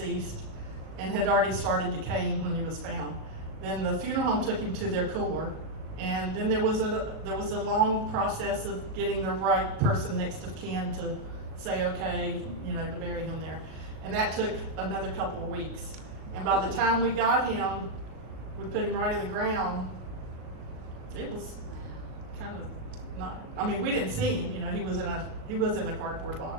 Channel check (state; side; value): late; left; 37 ms